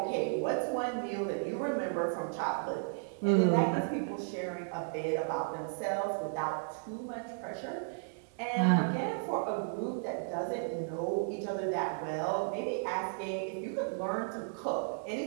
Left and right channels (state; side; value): silent; left; digital silence